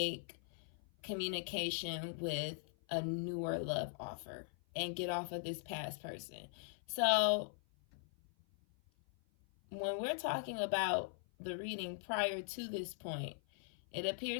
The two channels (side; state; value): right; silent; 51 dB below the other